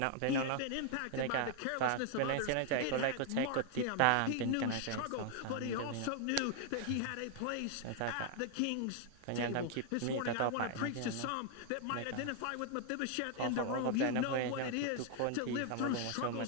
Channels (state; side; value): different; both; correlation 0.00